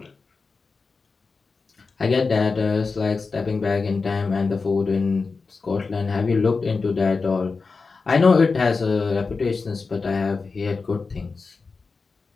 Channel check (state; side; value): quieter; right; 4.4 dB